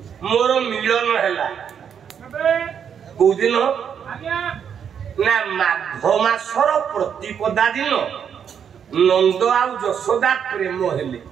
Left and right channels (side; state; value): left; quieter; 7.9 dB